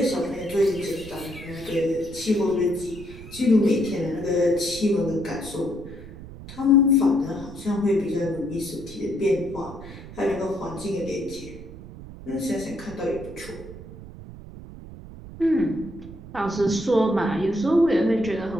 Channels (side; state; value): right; noise; rumble, 15 dB below the sound